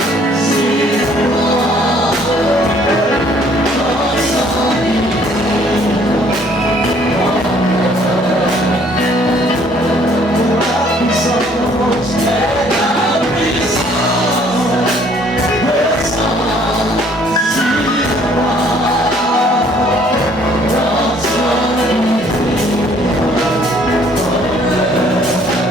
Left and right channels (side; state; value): both; normal; correlation 0.60